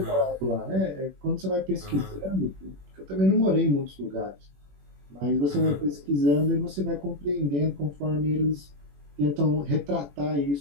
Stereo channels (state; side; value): late; left; 21 ms